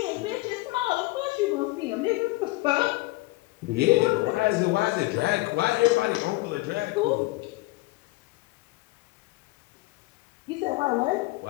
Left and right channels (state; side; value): quieter; right; 20.8 dB